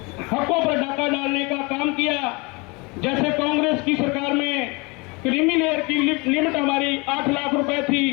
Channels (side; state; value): right; quieter; 27.7 dB